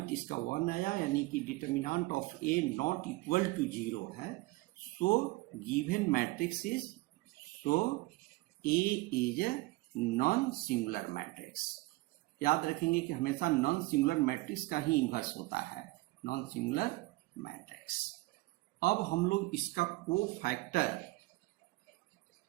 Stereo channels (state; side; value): quieter; left; 21.6 dB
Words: इसका 1 आया, यानी कि determinant of A not equal to 0 है। So given matrix is, so A is a non singular matrix. याद रखेंगे कि हमेशा नॉन सिंगुलर मैट्रिक्स का ही इन्वर्स होता है, नॉन सिंगुलर मैट्रिक्स। अब हम लोग इसका कोफैक्टर